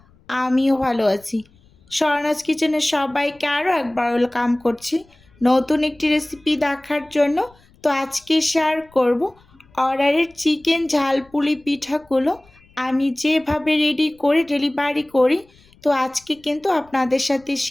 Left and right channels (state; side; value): noise; left; rumble, 30 dB below the sound